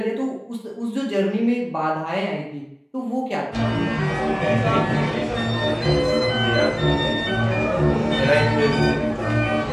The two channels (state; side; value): identical; both; correlation 1.00